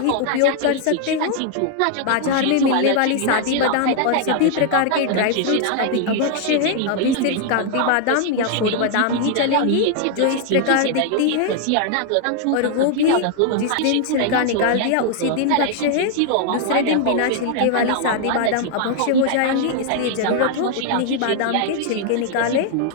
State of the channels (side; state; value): both; different; correlation 0.00